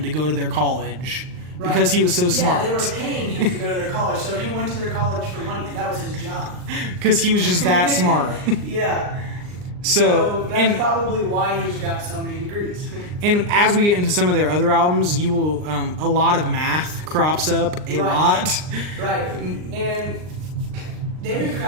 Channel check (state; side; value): late; left; 39 ms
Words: to go to their college. Right. Because he was so smart. Yeah, they were paying him to go to their college, so he went to their college for money. That was his job. Because he was just that smart. Yeah. So that's probably why he's got so many degrees. And as we get into some of their other albums, you will a lot of math crops up a lot. Right. And David